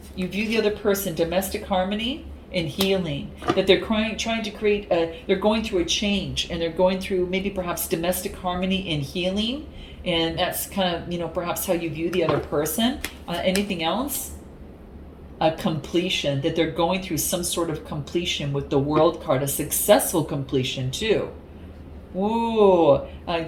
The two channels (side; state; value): both; identical; correlation 1.00